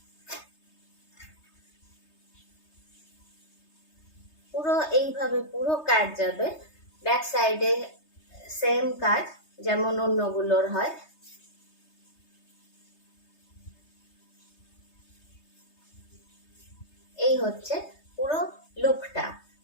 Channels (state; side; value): late; right; 3.3 ms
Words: পুরো এইভাবে পুরো কাজ যাবে, ব্যাক সাইডে সেম কাজ যেমন অন্যগুলোর হয়। এই হচ্ছে পুরো লুকটা।